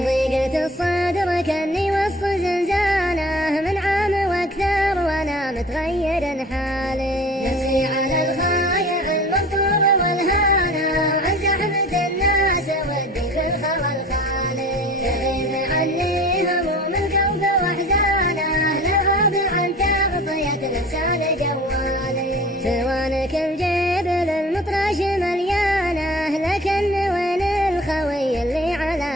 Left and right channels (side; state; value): both; normal; correlation 0.43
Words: ضيقة الصدر كني وسط زنزانه، من عام واكثر وانا متغير حالي. نفسي على الخايع المنطور والهانه، وعن زحمة الناس ودي في الخوى الخالي. تغيب عني هموم القلب واحزانه، لغاب عن تغطية الانسان جوالي. سوانك الجبل المطرش مليانه، لكن وين الخوي اللي